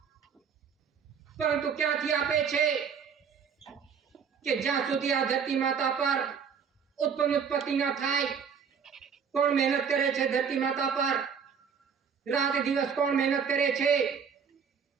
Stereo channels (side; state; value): left; quieter; 6.6 dB